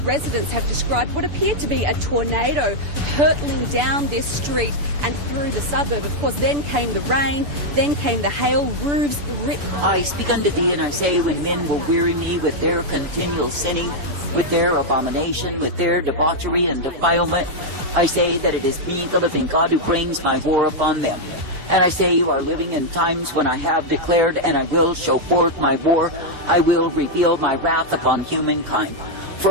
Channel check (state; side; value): late; left; 6.9 ms